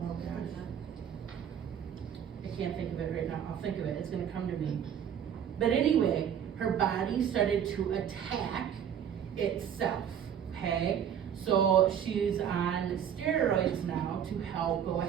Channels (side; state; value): left; quieter; 8.8 dB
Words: gosh. I can't think of it right now, I'll think of it, it's gonna come to me. But anyway, her body started to attack itself, okay? So she's on steroids now to help go